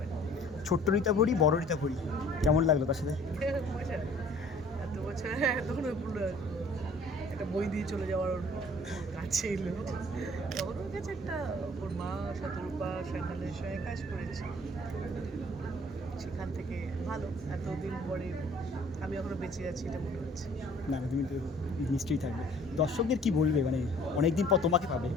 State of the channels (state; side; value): normal; both; correlation 0.53